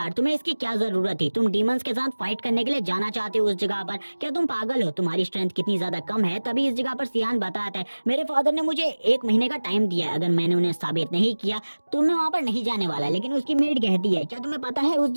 तुम्हें इसकी क्या जरूरत थी? तुम डीमंस के साथ फाइट करने के लिए जाना चाहते हो उस जगह पर? क्या तुम पागल हो? तुम्हारी स्ट्रेंथ कितनी ज्यादा कम है। तभी इस जगह पर सियान बताता है मेरे फादर ने मुझे 1 महीने का टाइम दिया है, अगर मैंने उन्हें साबित नहीं किया तो मैं वहाँ पर नहीं जाने वाला। लेकिन उसकी मेड कहती है क्या तुम्हें पता है उस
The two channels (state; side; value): inverted; both; correlation -1.00